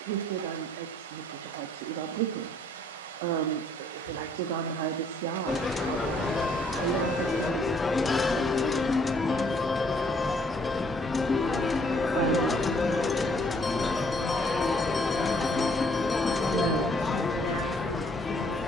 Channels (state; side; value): normal; both; correlation 0.65